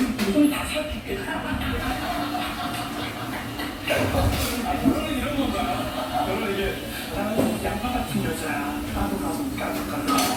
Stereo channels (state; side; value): identical; both; correlation 1.00